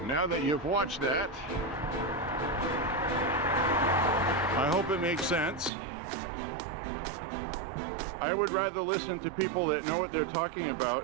now that you've watched that, I hope it makes sense. I would rather listen to people that know what they're talking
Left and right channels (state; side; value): drops out; left; at 5.7 s